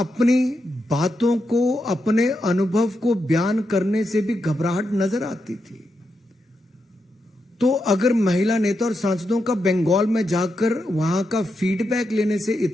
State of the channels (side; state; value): both; normal; correlation 0.85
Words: बातों को, अपने अनुभव को बयान करने से भी घबराहट नजर आती थी। तो अगर महिला नेता और सांसदों का बंगाल में जाकर वहां का फीडबैक लेने से